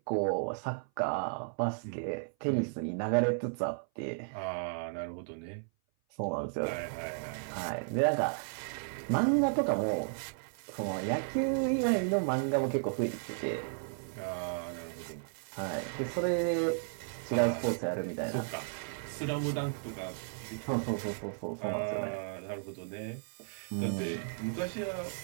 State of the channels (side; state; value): left; silent; 55 dB below the other